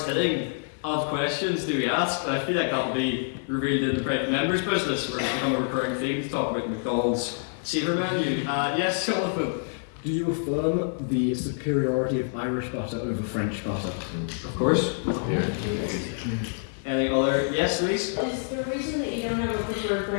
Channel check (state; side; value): silent; right; 57 dB below the other